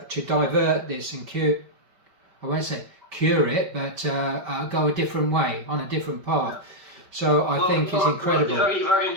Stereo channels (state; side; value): late; left; 5.2 ms